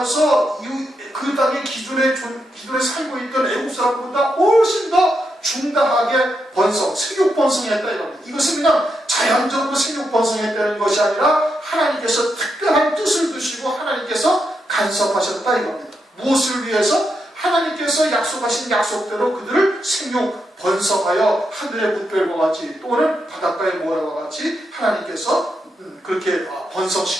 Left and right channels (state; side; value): normal; both; correlation 0.83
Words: 그 땅에 기존에 살고 있던 애국 사람보다 훨씬 더 중다하게 번성, 생육 번성했다 이겁니다. 이것은 그냥 자연적으로 생육 번성했다는 것이 아니라 하나님께서 특별한 뜻을 두시고 하나님께서 간섭하셨다 이겁니다. 무엇을 위해서? 하나님께서 약속하신 약속대로 그들을 생육 번성하여 하늘의 뭇별과 같이 또는 바닷가의 모래와 같이 하나님께서 그렇게